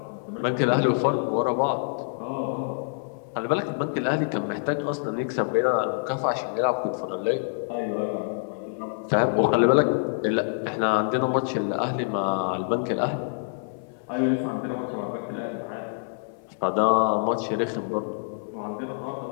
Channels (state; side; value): silent; right; 61 dB below the other